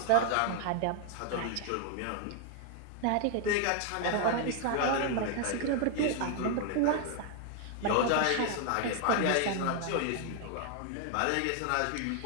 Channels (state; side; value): different; both; correlation 0.00